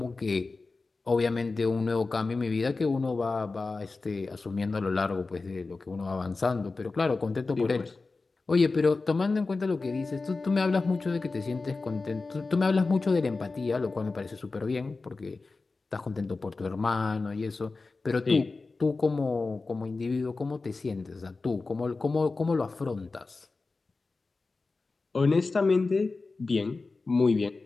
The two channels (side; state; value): right; quieter; 3.8 dB